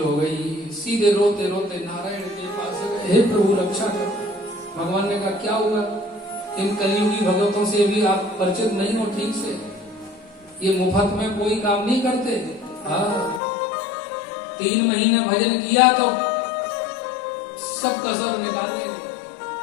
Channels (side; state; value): right; drops out; at 13.4 s